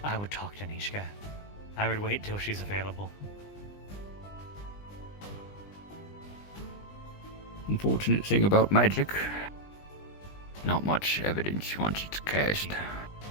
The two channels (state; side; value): late; right; 20 ms